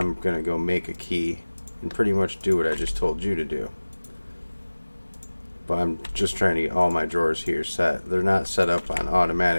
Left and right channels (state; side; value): inverted; both; correlation -1.00